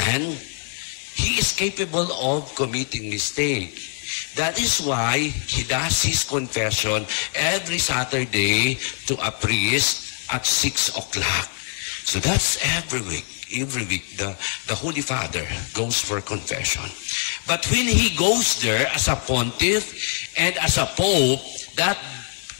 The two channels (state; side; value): silent; right; 59 dB below the other